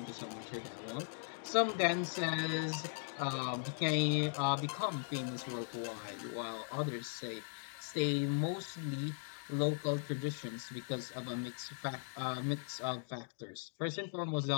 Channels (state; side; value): silent; right; digital silence